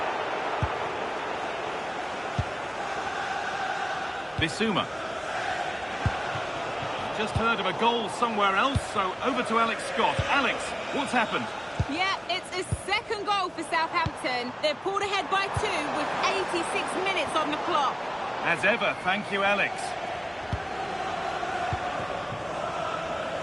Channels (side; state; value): both; identical; correlation 1.00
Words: Bissouma. Just heard of a goal somewhere else, so over to Alex Scott. Alex, what's happened? Yeah, it's a second goal for Southampton. They're pulled ahead by 2 with 86 minutes on the clock. As ever, thank you, Alex.